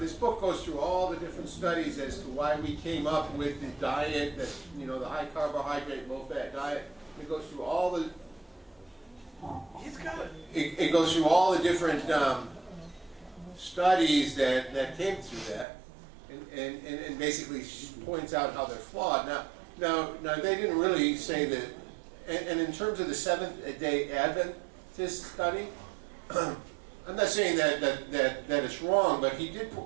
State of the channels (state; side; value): drops out; left; at 15.7 s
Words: this book goes through all the different studies as to why we came up with the diet, that, you know, the high carbohydrate, low fat diet. It goes through all the. It goes through all the different studies that came through that, and basically points out how they're flawed. Now they didn't really say that. And in terms of the Seventh-day Adventist study. I'm not saying that it's wrong, but